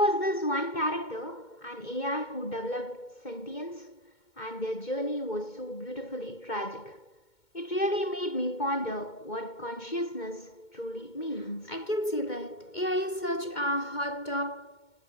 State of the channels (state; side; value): late; right; 2.2 ms